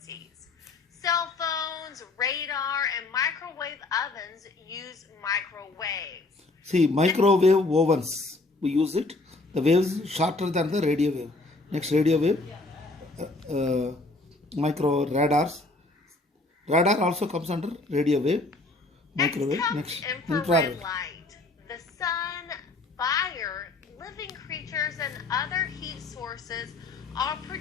Cell phones, radar, and microwave ovens use microwaves. See, microwave ovens, we use it. The waves shorter than the radio wave. Next, radio wave. Micro radars. Radar also comes under radio wave. Microwave. Next, infrared. Light. The sun, fire, living creatures, and other heat sources all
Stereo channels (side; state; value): right; quieter; 3.2 dB